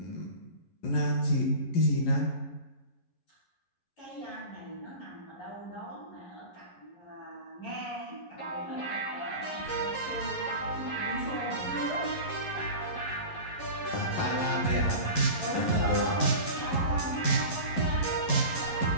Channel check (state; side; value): late; right; 11 ms